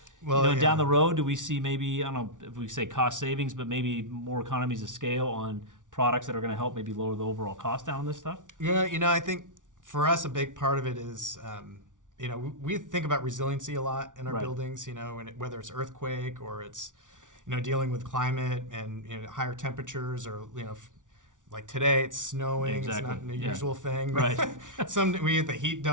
down the road, do we see maybe, I don't know if we say cost savings, but maybe more economies of scale on products that are going to help maybe lower the overall cost down on this stuff? Yeah, I think for us a big part of it is, we think about resiliency a lot in our buildings, whether it's earthquake or it's, dealing with climate and higher temperatures or, like today it's snowing, exactly. It's not a usual thing. Right. We get the heat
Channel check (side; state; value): left; late; 0.87 ms